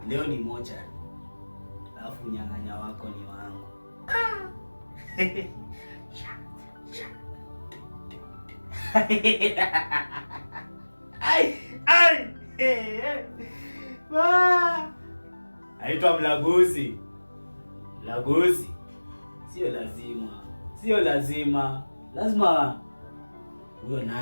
Leo ni mochari. Alafu nyang'anya wako ni wangu. Aitwa Mlaguzi. Mlaguzi. Sio lazima. Lazima huyo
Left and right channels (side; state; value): both; inverted; correlation -1.00